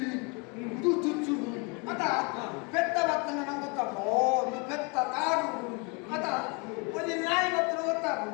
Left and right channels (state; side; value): quieter; right; 31.9 dB